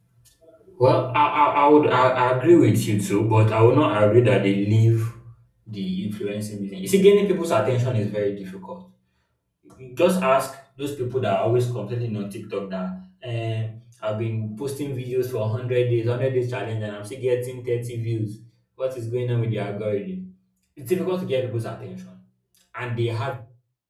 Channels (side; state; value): both; identical; correlation 1.00